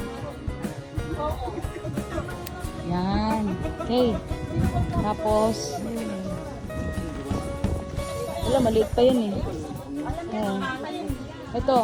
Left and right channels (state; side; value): identical; both; correlation 1.00